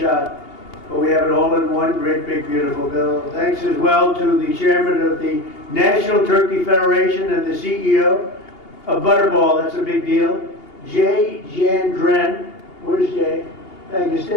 But we have it all in one great, big, beautiful bill. Thanks as well to the chairman of the National Turkey Federation and the CEO of Butterball. That's a big deal. Jay Jandren. Where's Jay? Thank you.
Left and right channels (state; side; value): late; right; 2.8 ms